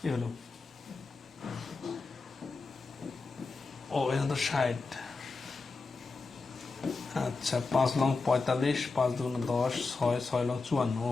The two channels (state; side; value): quieter; right; 4.1 dB